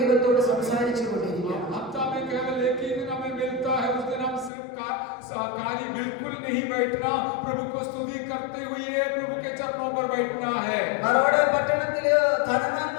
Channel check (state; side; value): drops out; right; at 4.5 s